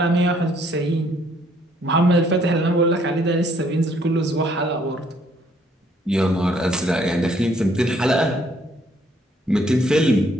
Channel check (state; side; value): normal; both; correlation 0.65